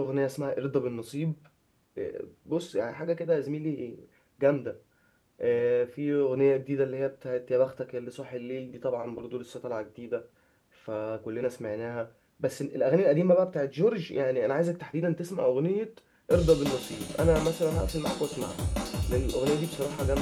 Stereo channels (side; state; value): both; identical; correlation 1.00